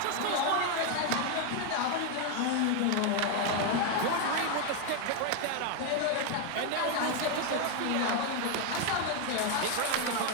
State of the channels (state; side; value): different; both; correlation 0.01